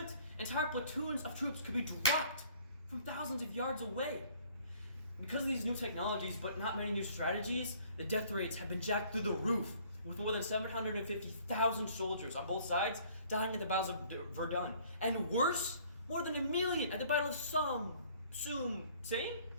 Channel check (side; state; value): both; inverted; correlation -0.57